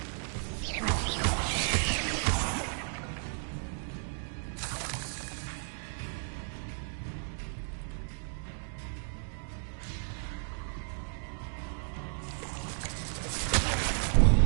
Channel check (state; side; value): silent; left; 56 dB below the other